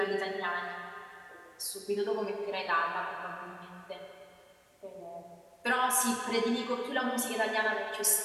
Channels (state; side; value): identical; both; correlation 1.00